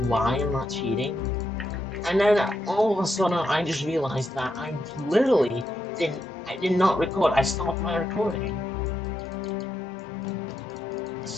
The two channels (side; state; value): both; normal; correlation 0.82